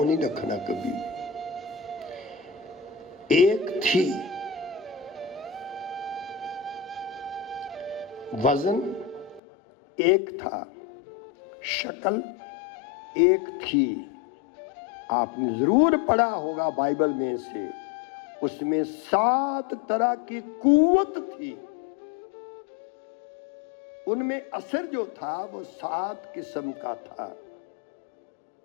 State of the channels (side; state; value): right; drops out; at 9.4 s